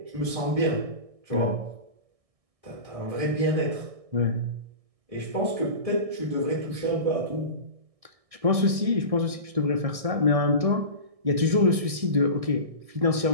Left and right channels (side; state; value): left; late; 1.6 ms